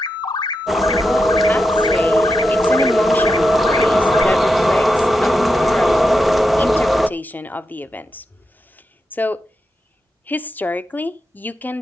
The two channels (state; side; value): normal; both; correlation 0.87